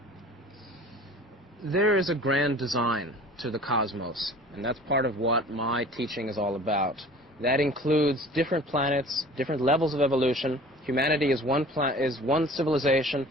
There is a grand design to the cosmos, and that's part of what my teaching is all about. That includes different planets, different levels of evolution. Humanity is one civilization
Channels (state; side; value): normal; both; correlation 0.44